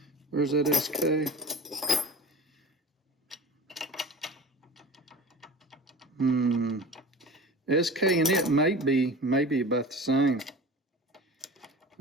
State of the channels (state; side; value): normal; both; correlation 0.36